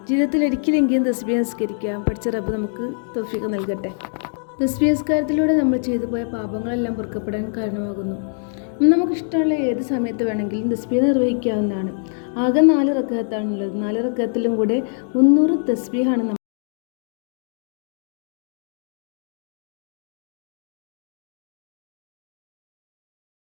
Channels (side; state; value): right; silent; digital silence